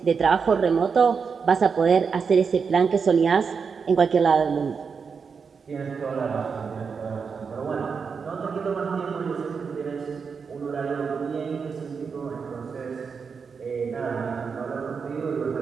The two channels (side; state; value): left; quieter; 5.7 dB